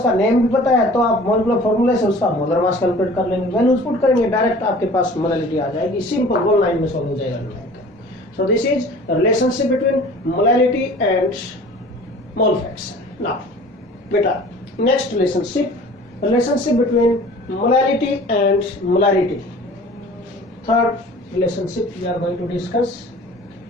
नेम भी पता है, तो आप मॉलिक्यूलर फॉर्मूले से उसका मोलर मास कैलकुलेट कर लेंगे, वैल्यूज पुट करेंगे, डायरेक्ट आपके पास मोलैरिटी आ जाएगी, सिंपल 1 लाइन में सॉल्व हो जाएगा। So this is relationship between molarity and mole fraction. Now बेटा next relationship between molarity and molarity, third relationship we are going to discuss,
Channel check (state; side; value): normal; both; correlation 0.45